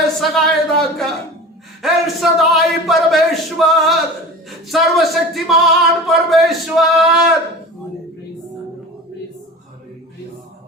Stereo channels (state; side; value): normal; both; correlation 0.35